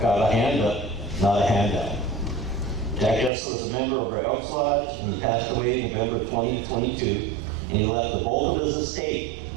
got a hand up, not a handout. Jack Esler was a member of our Elks Lodge, and he passed away in November 2022, and he left the bulk of his estate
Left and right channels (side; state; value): left; drops out; at 3.3 s